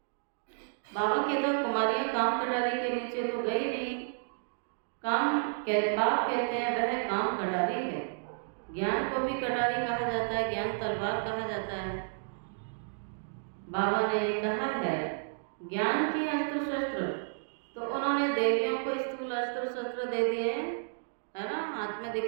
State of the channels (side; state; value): left; silent; digital silence